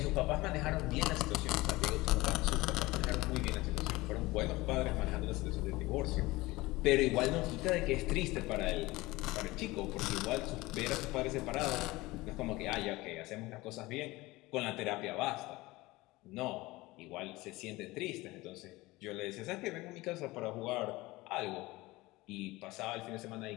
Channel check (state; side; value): quieter; right; 20.5 dB